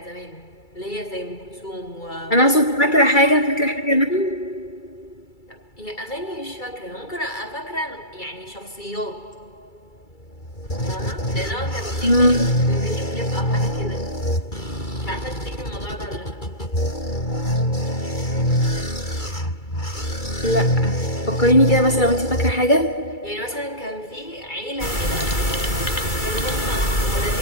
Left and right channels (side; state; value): right; late; 2.3 ms